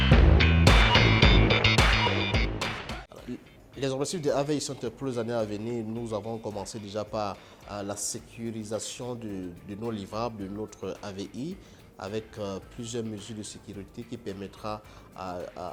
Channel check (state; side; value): identical; both; correlation 1.00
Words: Les objectifs de AVI Center pour les années à venir, nous avons commencé déjà par la sécurisation de nos livrables, de notre AVI, avec plusieurs mesures de sécurité qui permettra